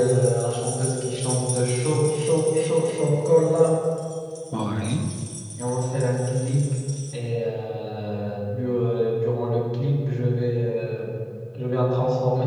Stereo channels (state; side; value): identical; both; correlation 1.00